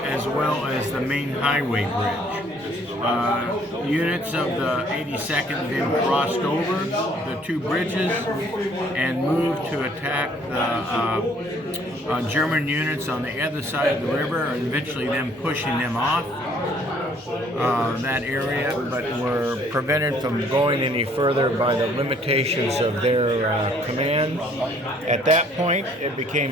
well as the main highway bridge. Units of the 82nd then crossed over the two bridges and moved to attack the German units on the other side of the river, and eventually them pushing them off. that area, but were prevented from going any further by the limitations of their command. At that point, it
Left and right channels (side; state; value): both; normal; correlation 0.61